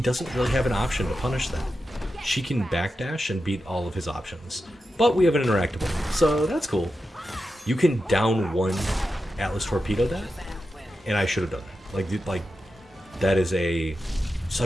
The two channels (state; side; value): normal; both; correlation 0.90